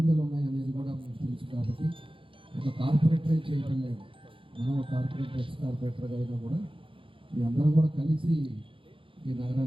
ఉన్నాయనేది కూడా మీకు తెలుసు. కాబట్టి ఒక కార్పొరేటరే చేయటం లేదు, మనం ఒక కార్పొరేటర్ ఎక్స్ కార్పొరేటర్గా అయినా కూడా మీ అందరం కూడా కలిసి ఈ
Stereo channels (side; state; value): left; late; 0.25 ms